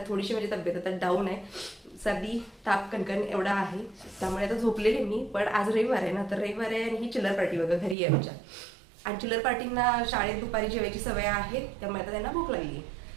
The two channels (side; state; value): left; drops out; at 8.0 s